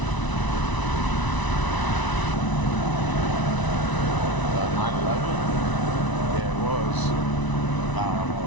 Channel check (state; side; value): late; right; 1.0 ms